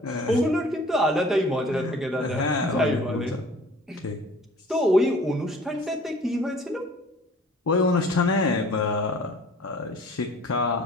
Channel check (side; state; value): both; normal; correlation 0.49